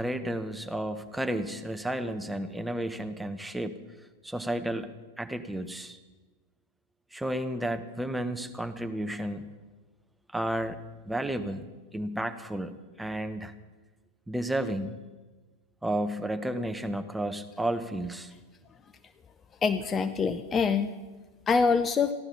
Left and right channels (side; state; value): both; normal; correlation 0.78